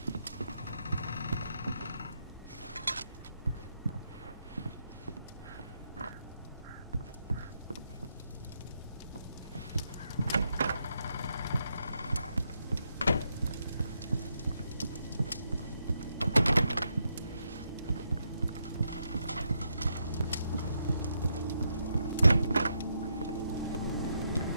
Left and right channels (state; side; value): inverted; both; correlation -0.80